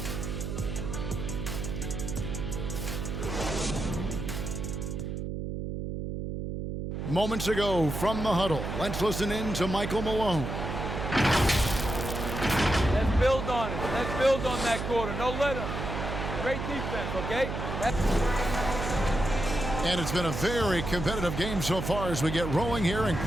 Moments ago from the huddle, let's listen in to Michael Malone. Let's build on it. Let's build on that quarter. No let up. Great defense, okay? And it's been a very competitive game so far as we get rolling here in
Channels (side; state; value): right; noise; hum, 4 dB below the sound